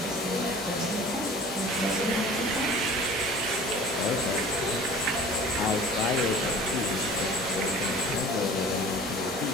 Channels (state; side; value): normal; both; correlation 0.44